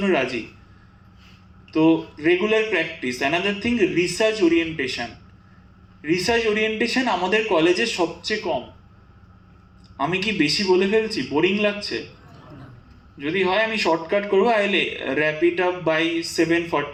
রাজি। তো regular practice. Another thing, research orientation. Research orientation আমাদের কলেজে সবচেয়ে কম। আমি কি বেশি বলে ফেলছি? বোরিং লাগছে? যদি হয় আমি শর্টকাট করবো, I wrap it up by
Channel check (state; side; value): identical; both; correlation 1.00